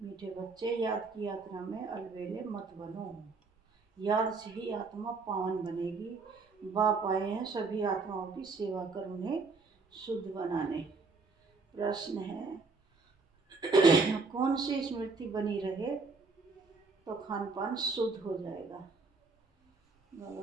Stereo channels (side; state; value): left; quieter; 4.2 dB